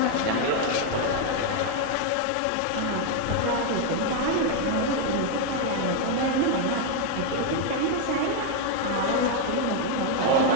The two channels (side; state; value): both; different; correlation 0.01